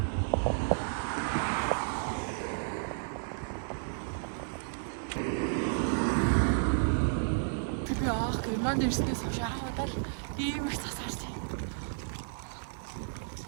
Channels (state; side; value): silent; left; 56 dB below the other